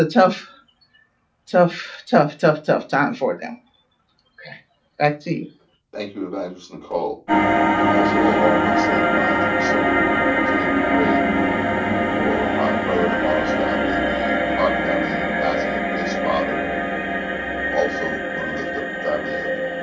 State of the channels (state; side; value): identical; both; correlation 1.00